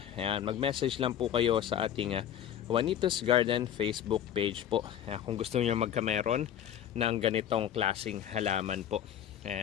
Ayan. Mag-message lang po kayo sa ating Juanito's Garden Facebook page po. Ayan. Kung gusto niyo magkameron ng ganitong klaseng halaman po.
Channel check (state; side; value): quieter; right; 10.2 dB